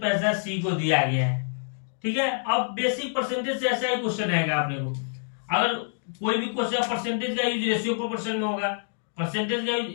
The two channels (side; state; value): right; silent; digital silence